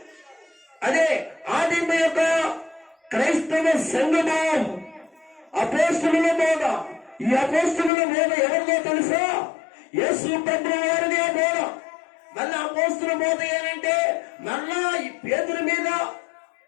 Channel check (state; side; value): drops out; right; at 7.9 s